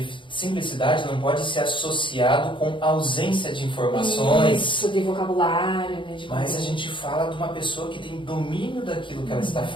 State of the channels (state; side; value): late; right; 0.24 ms